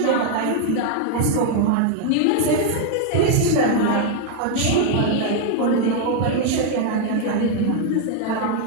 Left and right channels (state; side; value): different; both; correlation 0.00